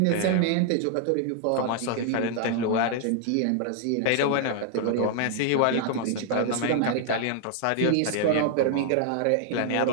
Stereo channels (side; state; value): both; different; correlation 0.00